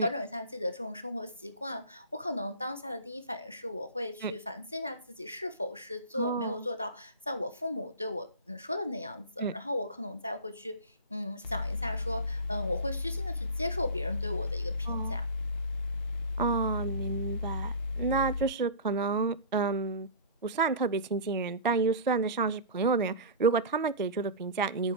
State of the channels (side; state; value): both; inverted; correlation -0.33